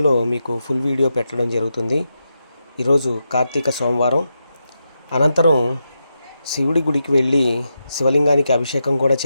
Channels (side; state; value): both; inverted; correlation -0.87